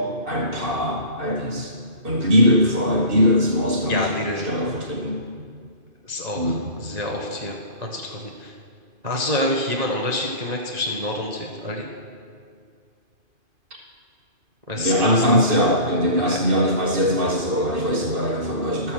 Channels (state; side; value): late; left; 2.5 ms